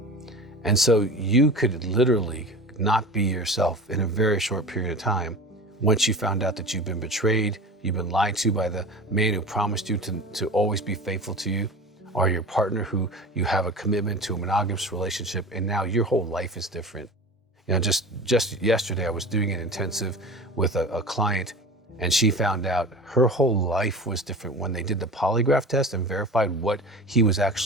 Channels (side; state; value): both; normal; correlation 0.35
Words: And so you could literally not be yourself in a very short period of time once you found out that you've been betrayed, you've been lied to by the man who promised you to always be faithful to you, or your partner who you have a commitment to a monogamous relationship, and now your whole life is different. Just yesterday I was doing an intensive with a client, and she found out her whole life was different when they did the polygraph test and verified what he was